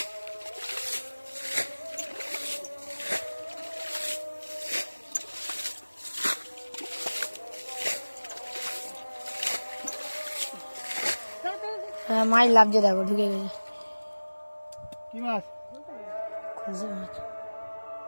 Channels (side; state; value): both; inverted; correlation -1.00